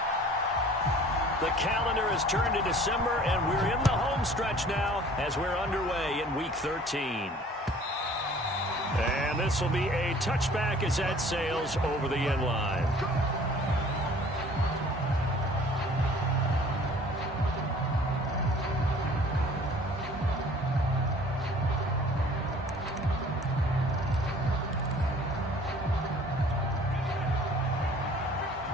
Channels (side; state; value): both; normal; correlation 0.51